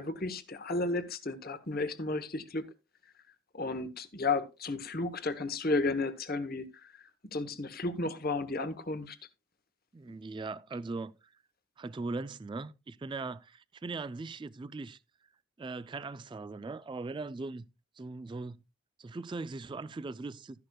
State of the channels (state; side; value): normal; both; correlation 0.41